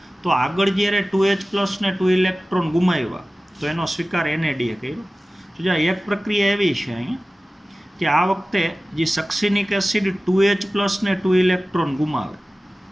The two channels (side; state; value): both; normal; correlation 0.96